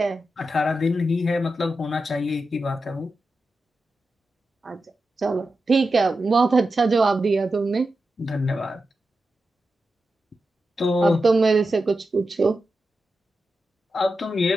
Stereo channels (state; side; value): normal; both; correlation 0.90